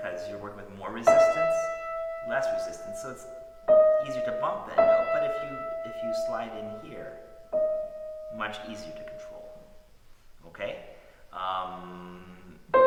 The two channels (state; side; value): identical; both; correlation 1.00